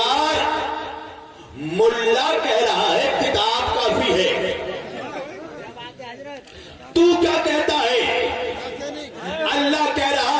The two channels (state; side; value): identical; both; correlation 1.00